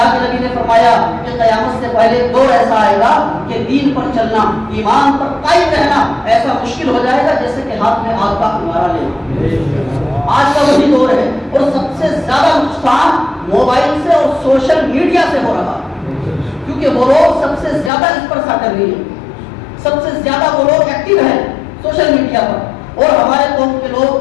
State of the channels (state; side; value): drops out; right; at 17.9 s